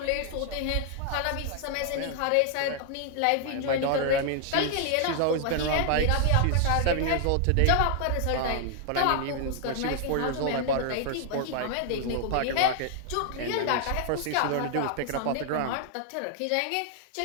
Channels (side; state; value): both; different; correlation 0.00